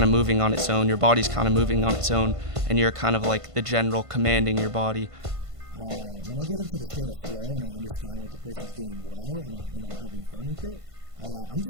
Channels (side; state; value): left; late; 1.5 ms